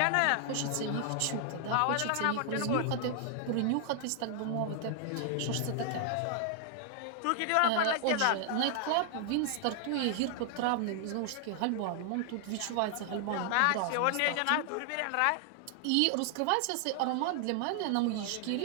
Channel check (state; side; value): different; both; correlation 0.00